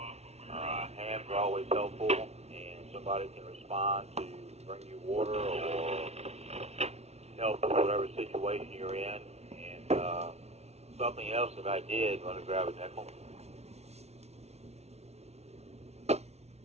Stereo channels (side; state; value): left; late; 0.31 ms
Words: hams are always helpful, and somebody can respond to bring you water or help with whatever situation you're in. And something else that I did, want to grab a nickel.